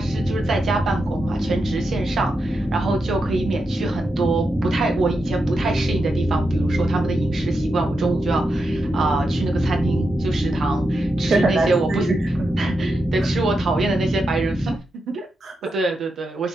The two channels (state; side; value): normal; both; correlation 0.86